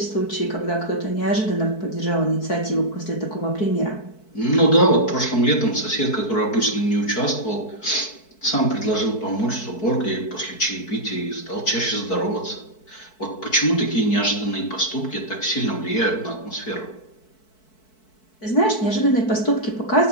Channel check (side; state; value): right; late; 4.6 ms